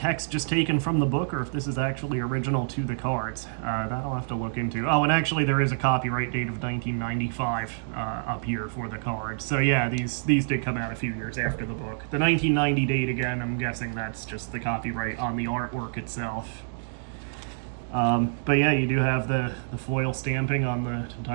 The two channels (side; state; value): left; silent; digital silence